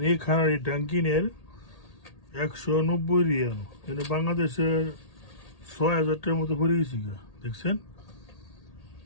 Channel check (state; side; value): late; right; 1.8 ms